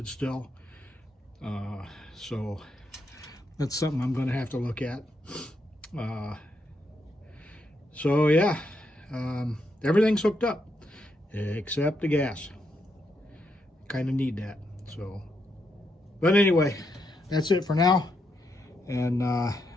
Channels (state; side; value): normal; both; correlation 0.80